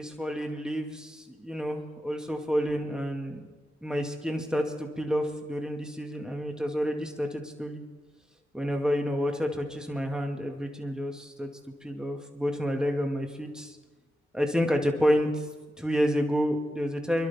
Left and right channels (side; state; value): both; normal; correlation 0.90